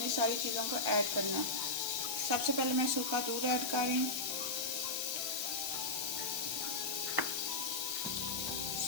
सारी चीज़ों को ऐड करना है। सबसे पहले मैं सूखा दूध ऐड कर रही हूँ,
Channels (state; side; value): noise; left; hiss, 3 dB below the sound